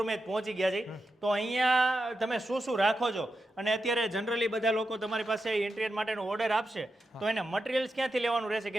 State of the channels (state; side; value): normal; both; correlation 0.88